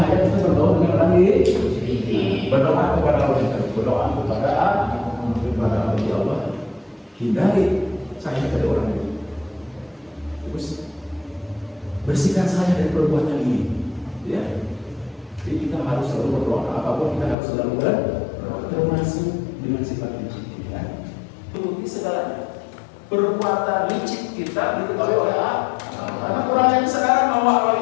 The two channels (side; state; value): right; drops out; at 17.4 s